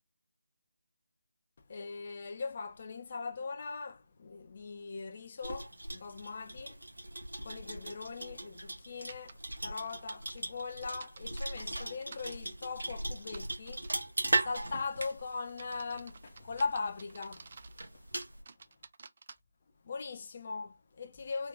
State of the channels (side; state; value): both; inverted; correlation -0.91